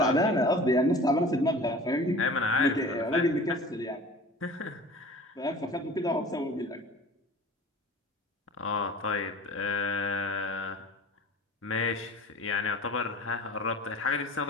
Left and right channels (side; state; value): both; normal; correlation 0.42